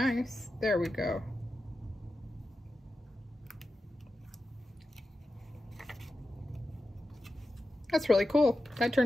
There we go. That's really cool. That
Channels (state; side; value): normal; both; correlation 0.92